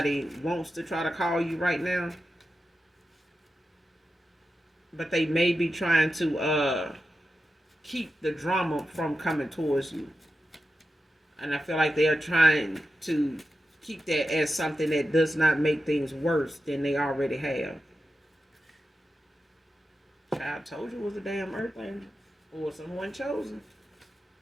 wants to try to call you right now, but they may be trying to keep the drama from coming towards you. And I feel like they are trying to keep that as something that does not make things worse than they already have. Child told you it was a damn earth angel or someone chosen.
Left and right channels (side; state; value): both; normal; correlation 0.91